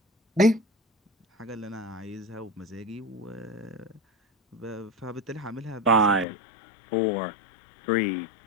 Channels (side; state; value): right; drops out; at 6.2 s